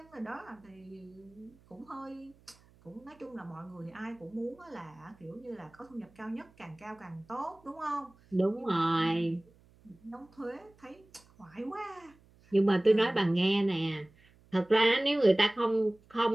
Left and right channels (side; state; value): right; noise; hum, 29 dB below the sound